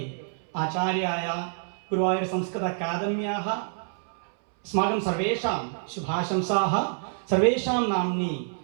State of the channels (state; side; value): silent; left; 60 dB below the other